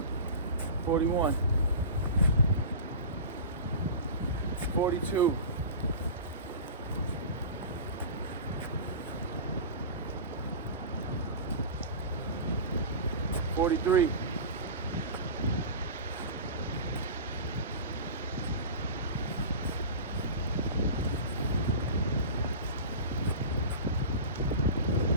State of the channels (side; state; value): both; inverted; correlation -0.32